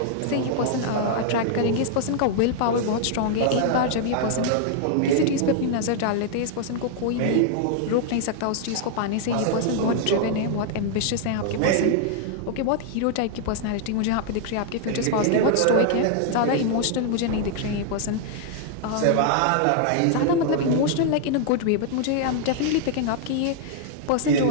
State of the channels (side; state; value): both; different; correlation 0.00